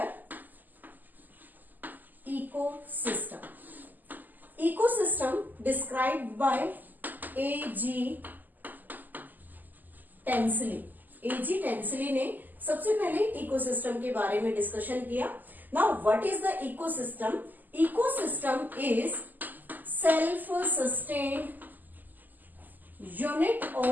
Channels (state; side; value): late; left; 0.085 ms